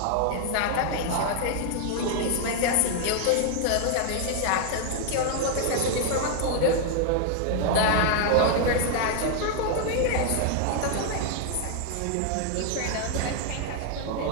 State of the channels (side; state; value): both; different; correlation 0.00